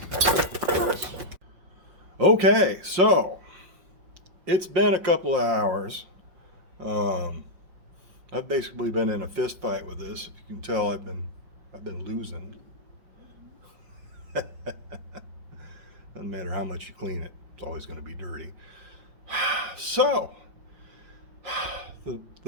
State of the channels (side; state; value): left; late; 5.5 ms